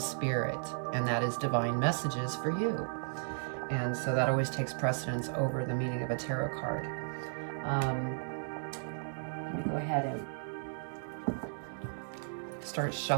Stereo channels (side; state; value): left; silent; digital silence